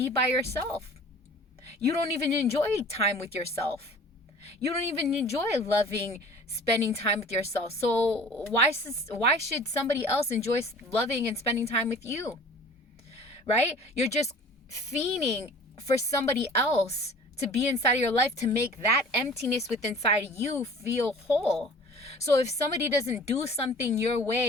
by yourself? You don't even enjoy time with yourself. You don't even enjoy loving, spending time with yourself. So why should somebody else enjoy loving and spending time with you? Right? You're just fiending for somebody else to be inside of your life to make that emptiness within inside you feel whole. So if somebody doesn't do something your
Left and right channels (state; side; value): normal; both; correlation 0.45